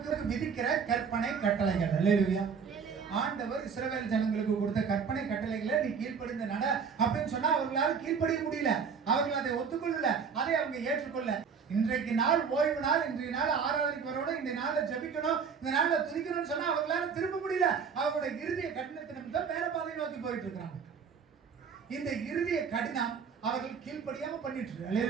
விதிக்கிற கற்பனை கட்டளைகள். அல்லேலூயா. ஆண்டவர் இஸ்ரவேல் ஜனங்களுக்கு கொடுத்த கற்பனை கட்டளைகளை நீ கீழ்ப்படிந்து நட அப்படின்னு சொன்னா அவர்களால் கீழ்ப்படிய முடியல. அவர்கள் அதை ஒத்துக்கொள்ளல, அதை அவங்க ஏற்றுக்கொள்ள. இன்றைக்கு நாள் ஓய்வு நாள், இன்றைய நாள் ஆராதனைக்கு வரணும், இந்த நாள்ல ஜெபிக்கணும், இந்த நாள்ல துதிக்கணும்னு சொன்னா அவர்களால திரும்ப முடியல. அவருடைய இருதய கடினத்தின் நிமித்தம் வேற பாதையை நோக்கி போயிட்டு இருக்காங்க. இந்த இருதய கடினம் அவர்கள் கீழ்ப்படியாம பண்ணிட்டு இருக்கு.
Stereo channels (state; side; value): quieter; left; 6.2 dB